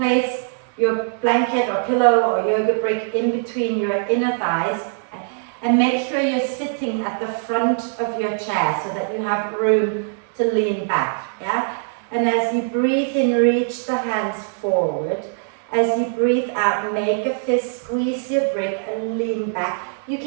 your blanket or pillow or yoga brick in between your inner thighs. Okay. And make sure you're sitting at the front of your chair so that you have room to lean back. Yeah? And as you breathe in, reach the hands forward. As you breathe out, make a fist, squeeze your brick and lean back. You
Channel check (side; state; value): left; silent; digital silence